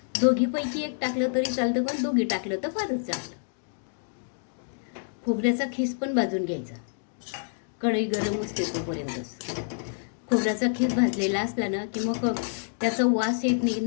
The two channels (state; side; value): silent; right; digital silence